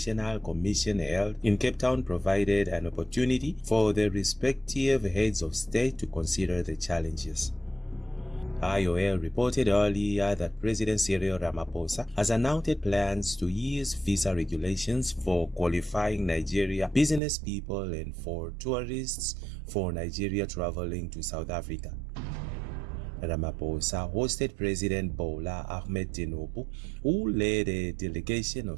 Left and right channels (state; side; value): drops out; left; at 17.2 s